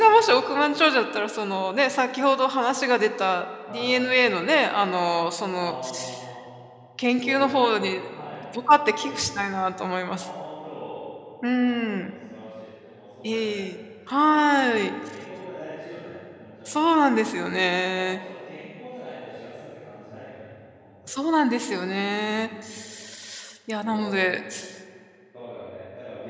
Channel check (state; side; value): identical; both; correlation 1.00